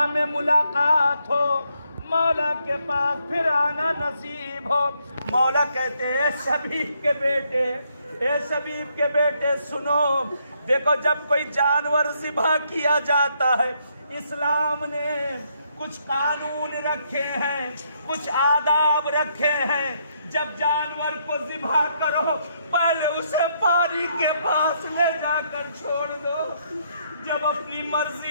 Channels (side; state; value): both; inverted; correlation -0.74